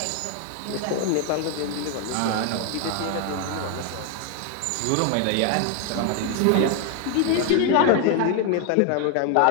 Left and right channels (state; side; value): different; both; correlation 0.00